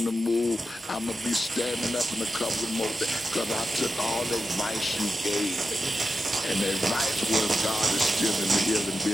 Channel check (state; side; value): normal; both; correlation 0.90